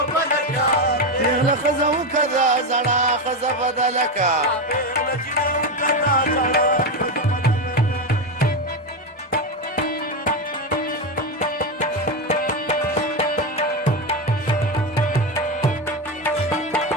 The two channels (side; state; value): both; normal; correlation 0.12